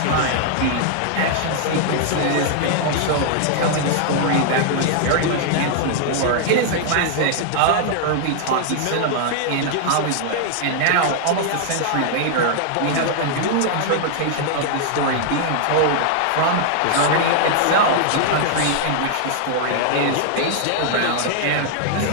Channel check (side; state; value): both; different; correlation 0.00